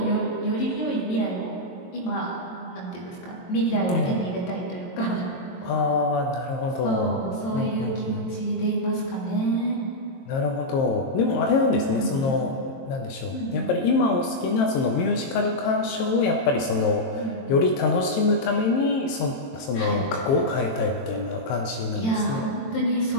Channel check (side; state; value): right; late; 22 ms